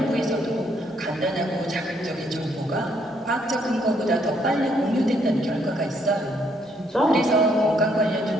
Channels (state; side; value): normal; both; correlation 0.71